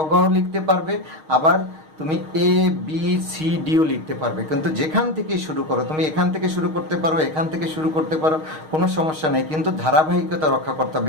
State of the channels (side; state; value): left; late; 6.4 ms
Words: ঘ লিখতে পারবে, আবার তুমি এ বি সি ডিও লিখতে পারবে। কিন্তু যেখান থেকে শুরু করো, তুমি এখান থেকে শুরু করতে পারো, এখান থেকে শুরু করতে পারো, কোনো সমস্যা নেই। কিন্তু ধারাবাহিকতা রক্ষা করতে